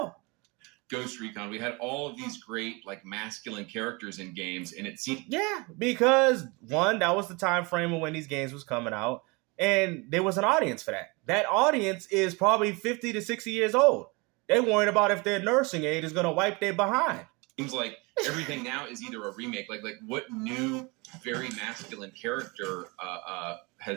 Ghost Recon. We had all of these great like masculine characters in games, and it seemed because one, that was the time frame of when these games was coming out, and there was an audience for that. That audience is probably 50 to 60 years old. They worried about if their nursing aid is going to wipe their behind. Seems like everything now is either a remake. Like what new, very masculine character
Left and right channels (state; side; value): quieter; left; 27.4 dB